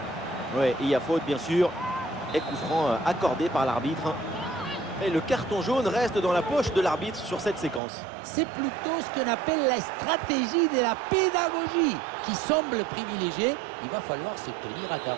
Ouais, il y a faute bien sûr. Et coup franc accordé par l'arbitre. Et le carton jaune reste dans la poche de l'arbitre sur cette séquence. C'est plutôt ce qu'on appelle la stratégie de la pédagogie qui semble privilégiée. Il va falloir se tenir à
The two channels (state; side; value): drops out; left; at 7.8 s